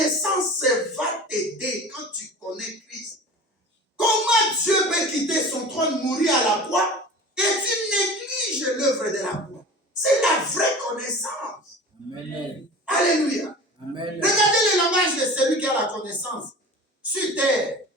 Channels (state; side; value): normal; both; correlation 0.37